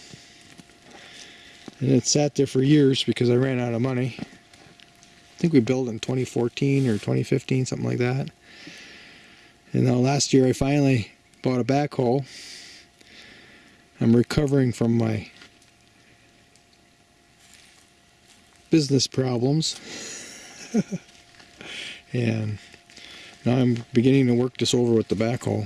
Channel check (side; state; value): both; identical; correlation 1.00